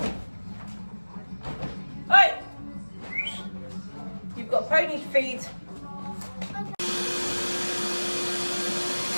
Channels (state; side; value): inverted; both; correlation -1.00